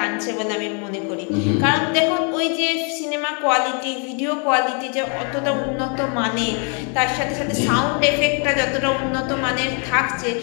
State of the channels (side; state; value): right; quieter; 38.3 dB